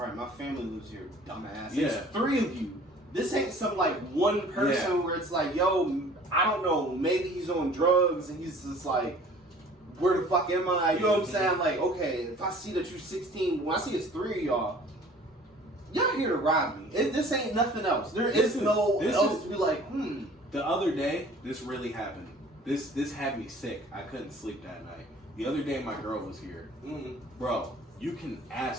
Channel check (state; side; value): normal; both; correlation 0.49